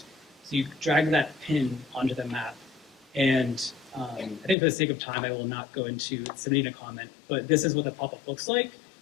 So you drag that pin onto the map. And I think for the sake of time, I will not go into submitting a comment, but this is what the pop-up looks like.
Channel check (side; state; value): right; drops out; at 4.5 s